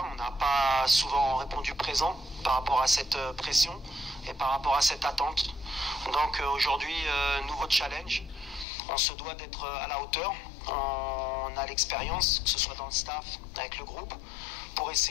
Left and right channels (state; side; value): drops out; right; at 8.7 s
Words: on n'a pas souvent répondu présent par rapport à cette pression et par rapport à cette attente. Donc aujourd'hui, nouveau challenge. On se doit d'être à la hauteur. On a l'expérience, que ce soit dans le staff, avec le groupe, pour